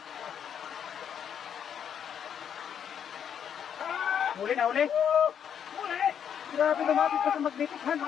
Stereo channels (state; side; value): quieter; right; 8.4 dB